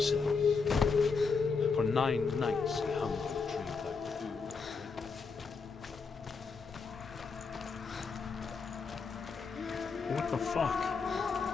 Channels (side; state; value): right; quieter; 4.9 dB